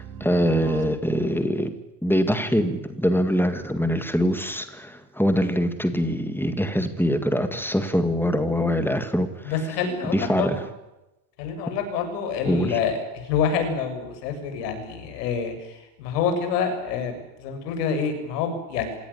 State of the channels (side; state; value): both; normal; correlation 0.62